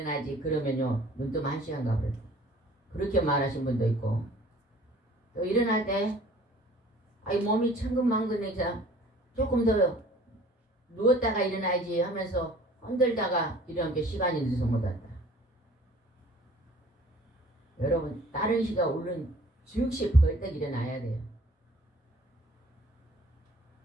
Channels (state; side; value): normal; both; correlation 0.52